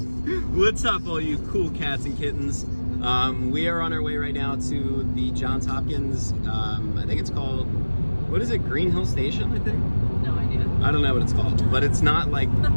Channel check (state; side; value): inverted; both; correlation -1.00